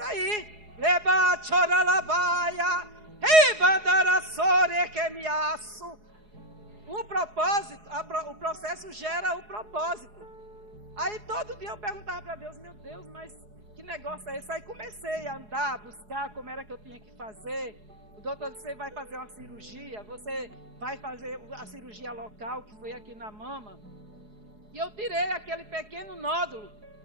aí. Leba choralabaia, ribandarassore que me aço. O propósito, o processo gera o propósito. Aí todo dia eu perguntava para Deus, meu Deus, mas que negócio é esse? Aí comecei a andar, a buscar como era que eu tinha que fazer. O doutor disse, você vai fazer uma cirurgia, você vai fazer a cirurgia local, que foi aqui na mama. E eu tirei aquele pequeno nódulo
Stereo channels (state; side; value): late; left; 4.8 ms